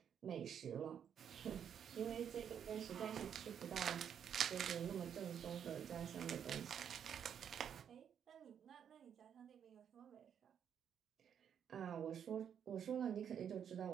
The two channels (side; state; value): left; quieter; 8.4 dB